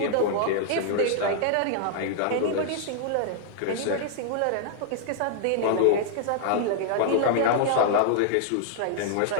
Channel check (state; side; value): different; both; correlation -0.01